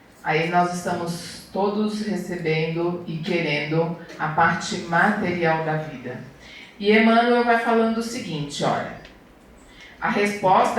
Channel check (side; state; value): both; identical; correlation 1.00